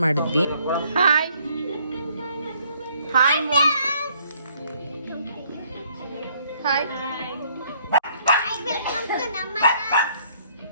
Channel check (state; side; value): inverted; both; correlation -0.65